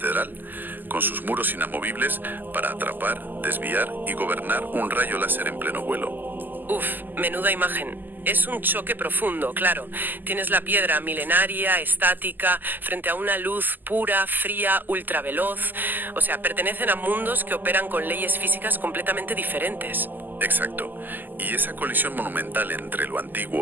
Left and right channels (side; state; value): left; late; 0.088 ms